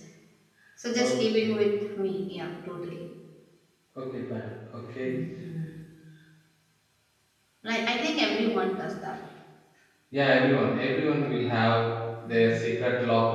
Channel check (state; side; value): identical; both; correlation 1.00